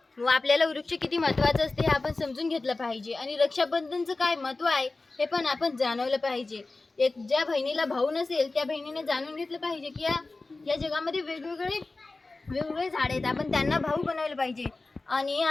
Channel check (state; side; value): quieter; right; 3.4 dB